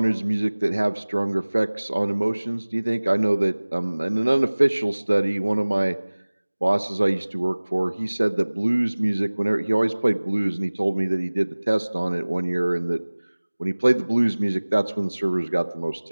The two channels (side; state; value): both; inverted; correlation -1.00